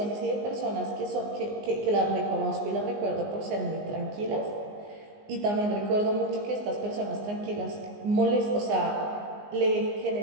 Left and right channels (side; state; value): left; late; 19 ms